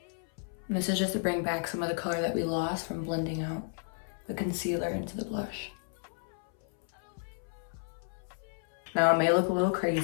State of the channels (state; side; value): silent; right; 56 dB below the other